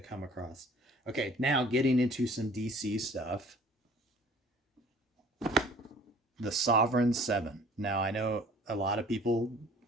come across. Okay, now getting into some DC stuff. The Sovereign 7. Now, I know a lot of people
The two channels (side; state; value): both; normal; correlation 0.50